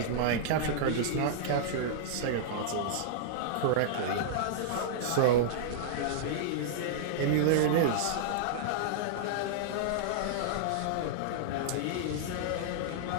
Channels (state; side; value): different; both; correlation -0.02